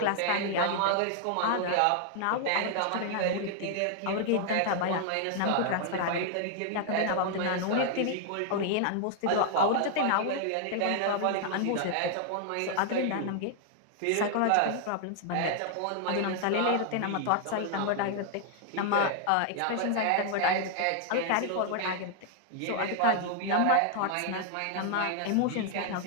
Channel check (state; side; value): different; both; correlation 0.00